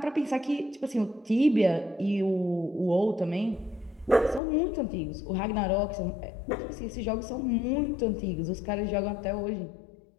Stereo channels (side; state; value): right; drops out; at 4.4 s